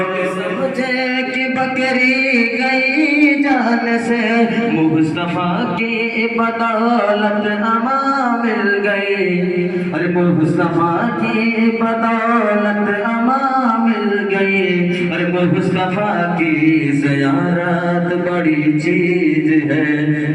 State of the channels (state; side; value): identical; both; correlation 1.00